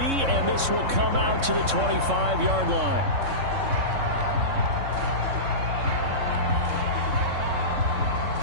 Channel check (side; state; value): left; late; 3.6 ms